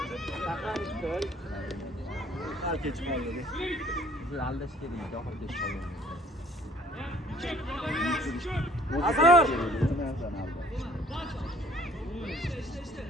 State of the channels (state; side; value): normal; both; correlation 0.56